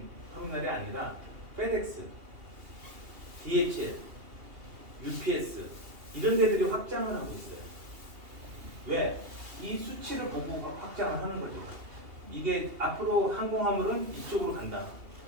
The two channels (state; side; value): late; left; 2.8 ms